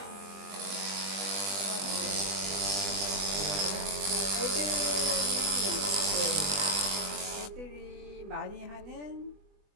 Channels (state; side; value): late; left; 20 ms